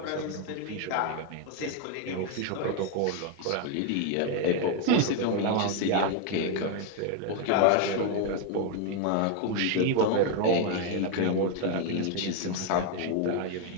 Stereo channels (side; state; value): both; different; correlation 0.01